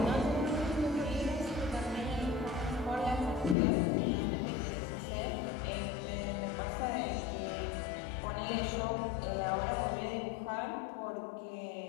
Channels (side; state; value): right; drops out; at 3.6 s